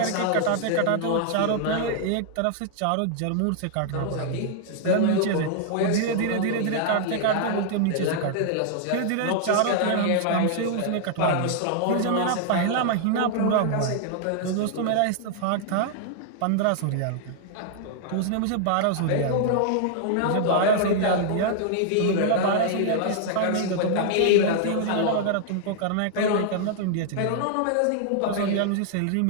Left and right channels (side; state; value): both; different; correlation -0.01